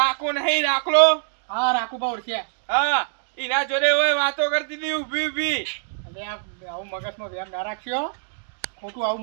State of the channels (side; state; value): left; silent; digital silence